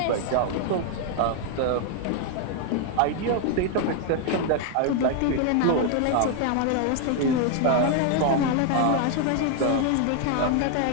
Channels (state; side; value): different; both; correlation 0.00